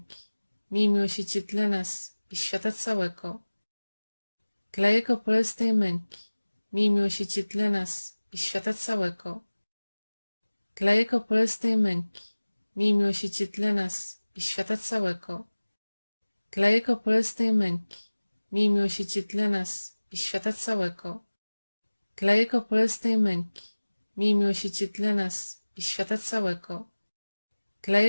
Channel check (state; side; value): inverted; both; correlation -1.00